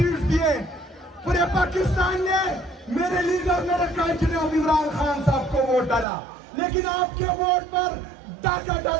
दिए, पूरे पाकिस्तान ने मेरे लीडर मेरे कांचन इमरान खान साहब को वोट डाला, लेकिन आपके वोट पर डाका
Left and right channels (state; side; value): drops out; left; at 6.1 s